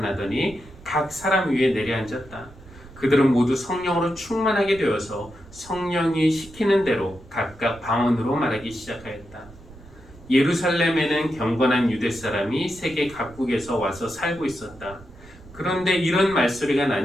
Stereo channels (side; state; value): right; noise; rumble, 21 dB below the sound